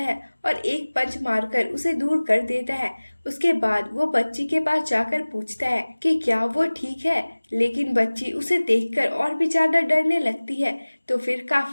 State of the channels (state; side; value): inverted; both; correlation -1.00